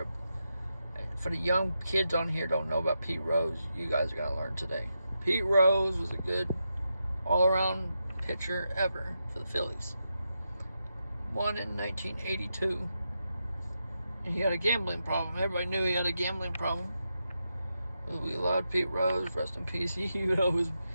For the young kids on here don't know about Pete Rose, you guys are gonna learn today. Pete Rose was a good all-around pitcher ever for the Phillies. Won in 1982, and he had a gambling problem. Everybody knew he had a gambling problem. We loved Pete Rose, rest in peace. He would always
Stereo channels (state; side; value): inverted; both; correlation -0.86